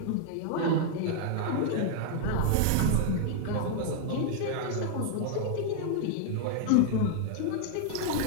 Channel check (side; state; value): both; different; correlation -0.01